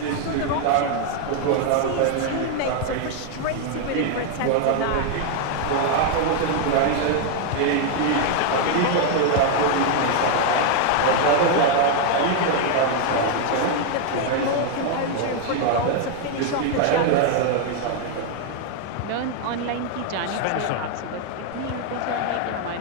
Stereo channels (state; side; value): different; both; correlation 0.00